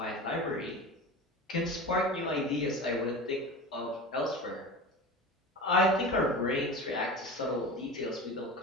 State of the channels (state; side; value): normal; both; correlation 0.31